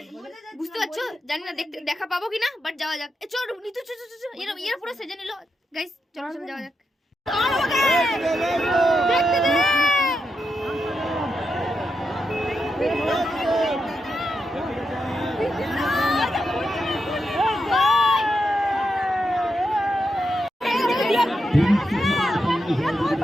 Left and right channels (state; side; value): normal; both; correlation 0.85